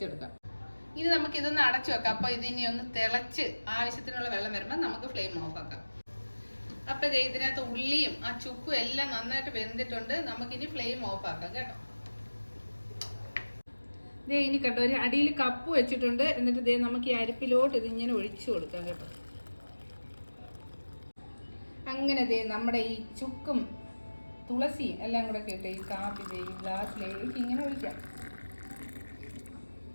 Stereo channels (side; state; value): both; inverted; correlation -1.00